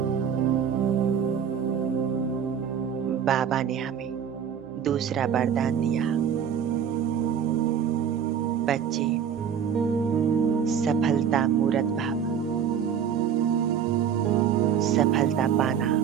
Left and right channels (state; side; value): quieter; left; 8.0 dB